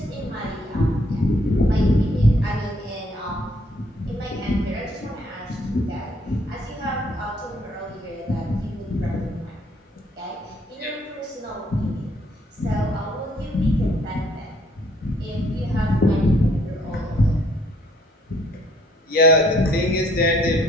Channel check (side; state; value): both; normal; correlation 0.64